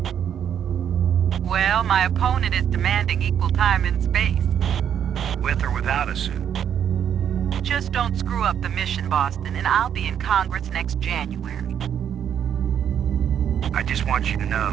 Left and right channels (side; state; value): left; quieter; 9.0 dB